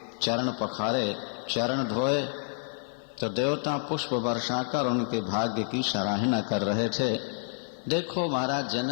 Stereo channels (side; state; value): right; silent; 59 dB below the other